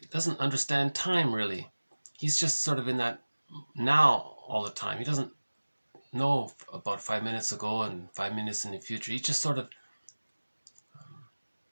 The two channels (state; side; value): inverted; both; correlation -1.00